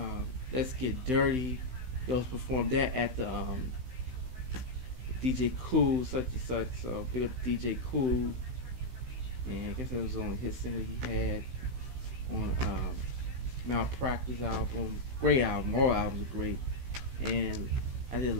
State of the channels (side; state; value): left; late; 16 ms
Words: Let's Get Dirty. He also performed that at the DJ Cool, such and such. So big up DJ Cool. And I guess that was the only hit single he had on Malpractice album. Great album. All albums are great. And I did the